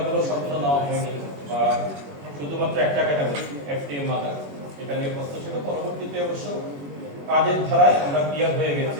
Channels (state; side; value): late; left; 21 ms